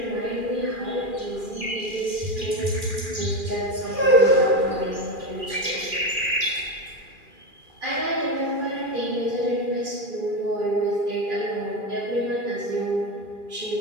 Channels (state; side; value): late; left; 2.4 ms